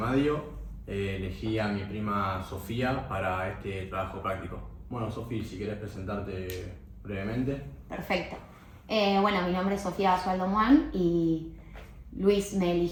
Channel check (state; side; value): identical; both; correlation 1.00